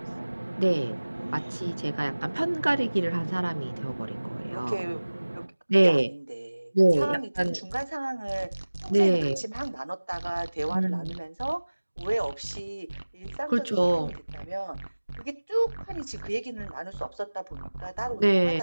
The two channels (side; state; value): both; inverted; correlation -1.00